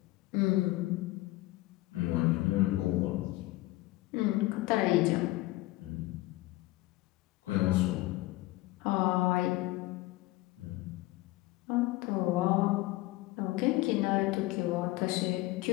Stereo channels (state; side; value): quieter; right; 18.9 dB